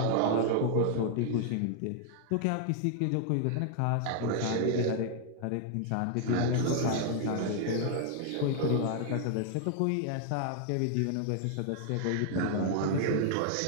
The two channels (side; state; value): both; different; correlation 0.00